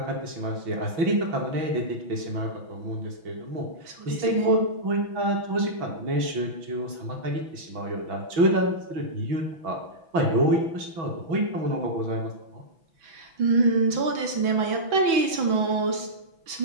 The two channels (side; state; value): left; late; 6.1 ms